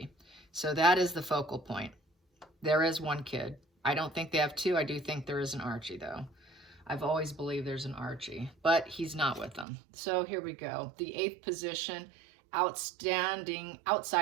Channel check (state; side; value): drops out; left; at 9.7 s